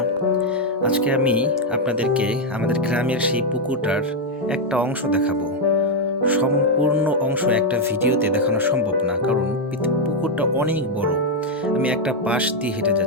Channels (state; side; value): normal; both; correlation 0.01